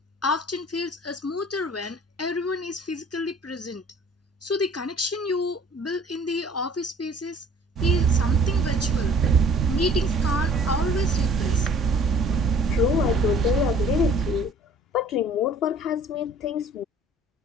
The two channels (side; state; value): both; normal; correlation 0.51